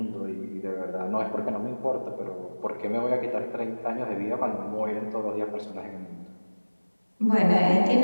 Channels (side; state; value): both; inverted; correlation -1.00